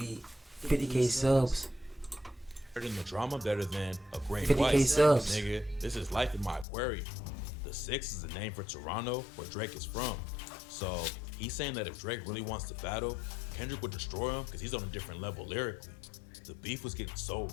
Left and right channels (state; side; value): drops out; right; at 6.7 s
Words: 50K subs. in the drama better than a great 50K wife. subs. Nigga, this is life in my aquarium. The 6 is the name for Toronto, where Drake is from. So he's saying that if Drake really wants to battle, Kendrick would destroy him because he's on a different level lyrically. The beef was getting so